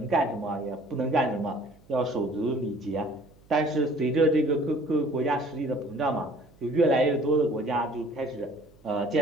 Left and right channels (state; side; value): noise; right; hum, 28 dB below the sound